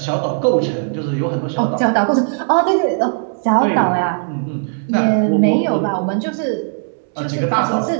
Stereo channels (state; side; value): silent; left; 68 dB below the other